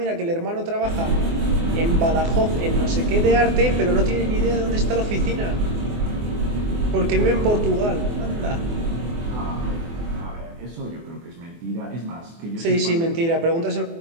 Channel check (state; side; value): late; left; 24 ms